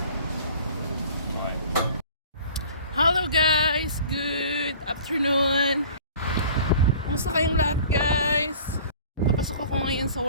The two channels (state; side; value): inverted; both; correlation -0.46